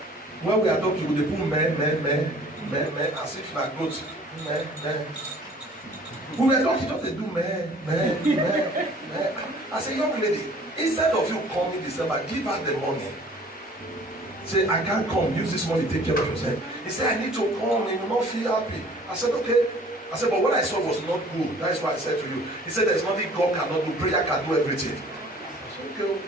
When we are talking, they put men, as if like goats. Men. We were talking, just they do men. I said, young lady, instead of you coming December, give her the money. Say, I can't come, use this money, take care of yourself. He said, I need to come, he will not feel happy. I said, okay. I said, but what I saw was not good. That is why I said to you. He said, there's nothing God cannot do. Prayer can do everything. I said,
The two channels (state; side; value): normal; both; correlation 0.52